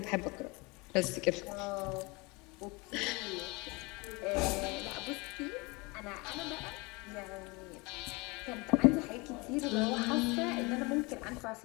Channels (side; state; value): right; quieter; 26.6 dB